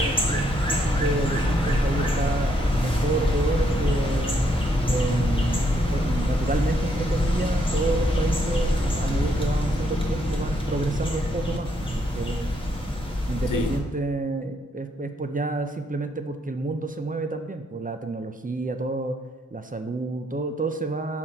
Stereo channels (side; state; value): both; normal; correlation 0.73